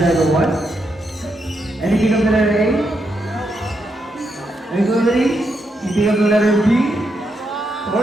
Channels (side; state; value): both; normal; correlation 0.81